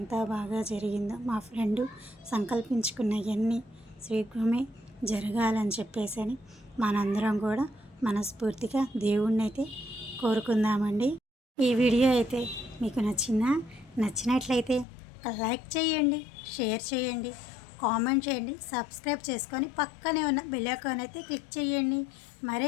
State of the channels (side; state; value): right; drops out; at 14.9 s